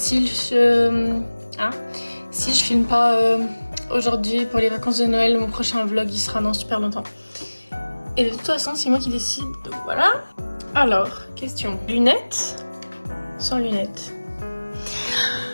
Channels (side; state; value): both; inverted; correlation -1.00